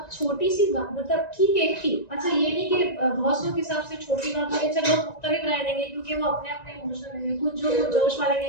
छोटी सी बात मतलब ठीक है की अच्छा ये नहीं कि बहुत लोग के हिसाब से छोटी बात है चलो लोग मुख्तलिफ राय देंगे क्योंकि वो अपने अपने इमोशन है कुछ जो कुछ जोश वाले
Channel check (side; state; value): right; late; 1.9 ms